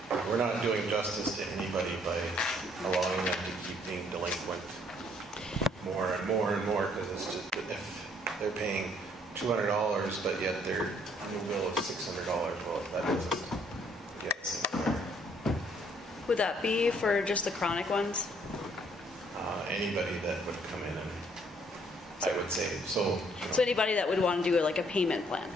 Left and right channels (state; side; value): normal; both; correlation 0.65